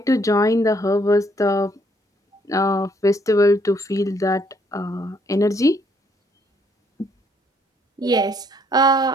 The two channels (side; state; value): both; normal; correlation 0.68